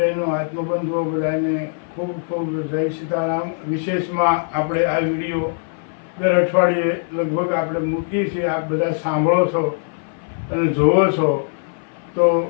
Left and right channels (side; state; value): right; silent; 57 dB below the other